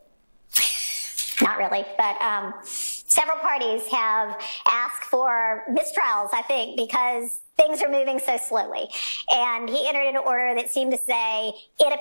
not really, but several parties have asked for mistrials, I think, because things are moving so slowly. And he entered an order that seemed to say, it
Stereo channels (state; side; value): inverted; both; correlation -1.00